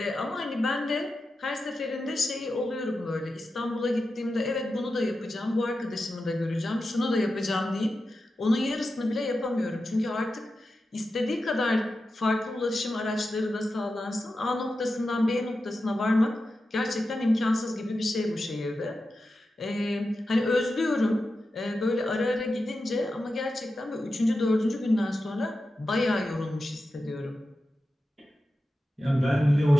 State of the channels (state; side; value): normal; both; correlation 0.91